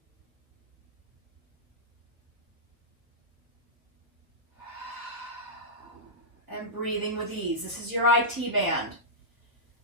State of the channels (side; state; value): left; late; 1.2 ms